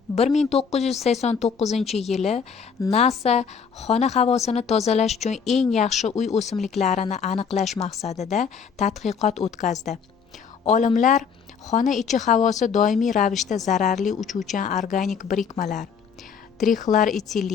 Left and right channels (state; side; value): quieter; right; 6.4 dB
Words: 1989-yili NASA xona havosini tozalash uchun eng yaxshi uy o'simliklarini aniqlash maqsadida tadqiqot o'tkazdi. Olimlar xona ichi havosi doimiy ravishda zararli uchuvchan organik birikmalar,